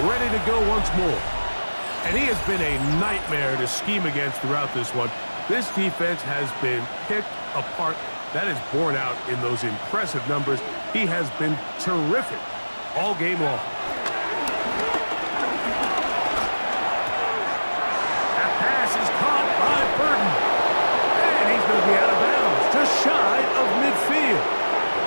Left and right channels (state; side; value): inverted; both; correlation -1.00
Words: ready to go once more. And he has been a nightmare to scheme against throughout this one. This defense has been picked apart. That is borne out in those impressive numbers. He has been terrific all game long. That pass is caught by Burton. And he's going to be out of bounds, just shy of midfield.